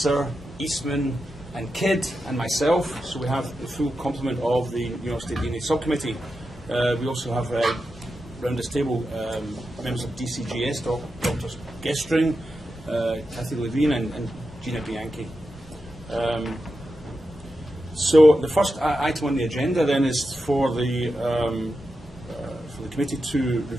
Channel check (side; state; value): both; normal; correlation 0.89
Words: Eastman, and Kidd, and myself. So we have the full complement of the New York State DNA Subcommittee. We also have around this table members of DCGS, Drs. Gestring, Kathy Levine, and Gina Bianchi. So the first item on the agenda then is for the committee to